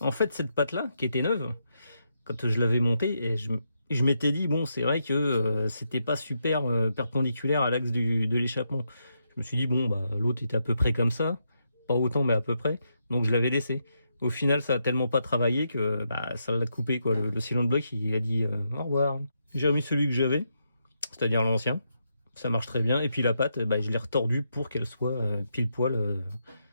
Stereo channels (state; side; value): inverted; both; correlation -0.81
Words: fait, cette patte là, qui était neuve, quand je l'avais montée, et je m'étais dit, bon, c'est vrai que c'était pas super perpendiculaire à l'axe de l'échappement. Je me suis dit, bon, bah, l'autre était à peu près comme ça, pas autant, mais à peu près, donc je l'avais laissé. Au final, ça a tellement pas travaillé que ça l'a coupé, quoi. Le cylinder block, il a dit au revoir. J'ai remis celui que j'avais, c'est-à-dire l'ancien. Ça marche très bien. Et puis la patte, je l'ai retordue pour qu'elle soit pile poil